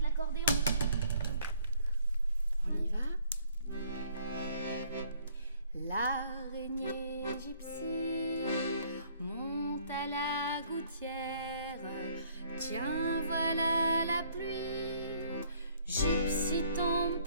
On y va. L'araignée gypsy monte à la gouttière. Tiens, voilà la pluie. Gypsy tombe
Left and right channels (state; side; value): inverted; both; correlation -0.61